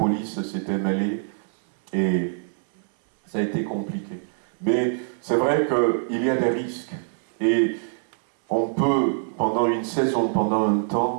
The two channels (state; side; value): silent; left; 61 dB below the other